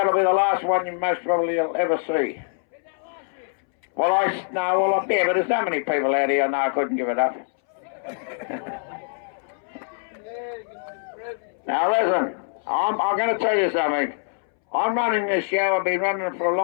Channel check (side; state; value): right; silent; 63 dB below the other